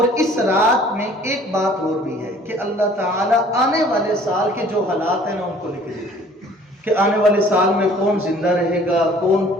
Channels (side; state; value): both; normal; correlation 0.53